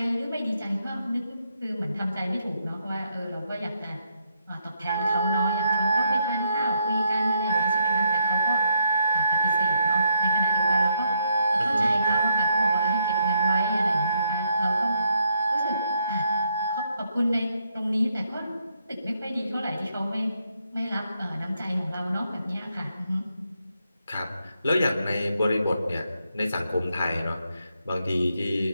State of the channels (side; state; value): both; inverted; correlation -0.77